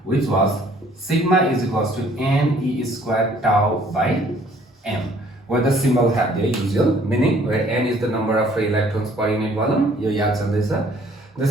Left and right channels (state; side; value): normal; both; correlation 0.59